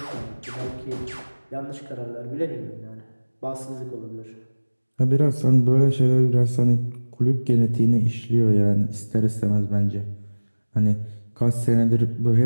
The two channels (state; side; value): inverted; both; correlation -1.00